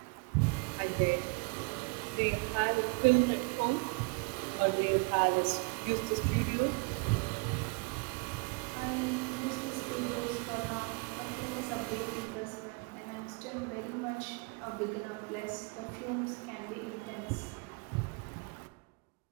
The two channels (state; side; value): quieter; left; 30.9 dB